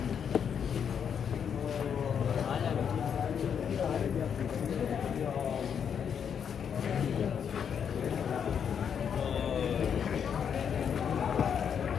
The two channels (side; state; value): right; quieter; 7.7 dB